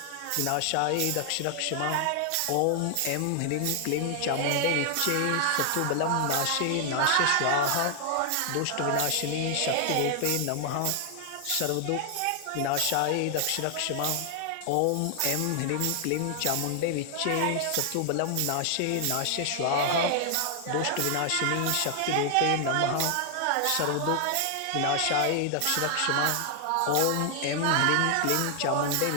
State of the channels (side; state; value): both; different; correlation 0.00